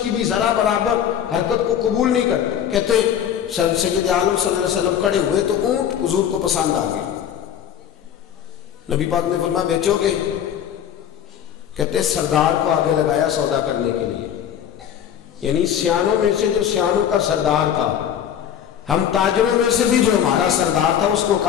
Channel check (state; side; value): quieter; right; 9.4 dB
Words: کی بھی ذرا برابر حرکت کو قبول نہیں کرتے۔ کہتے سید عالم صلی اللہ علیہ وسلم کھڑے ہوئے تو اونٹ حضور کو پسند آ گیا، نبی پاک نے فرمایا بیچو گے؟ کہتے سردار کو آگے لگایا سودا کرنے کے لیے، یعنی سیانوں میں سے جو سیانوں کا سردار تھا، ہم تاجروں میں سے بھی جو ہمارا سردار تھا اس کو